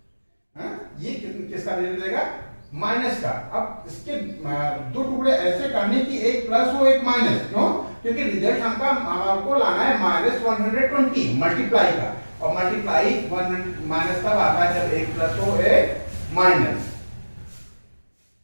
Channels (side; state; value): both; inverted; correlation -1.00